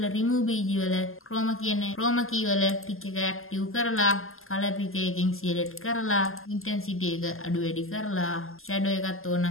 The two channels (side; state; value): right; late; 0.61 ms